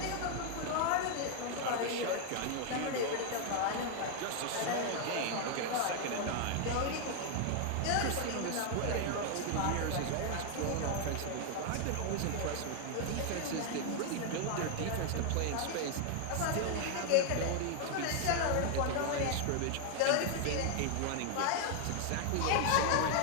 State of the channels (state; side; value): different; both; correlation 0.00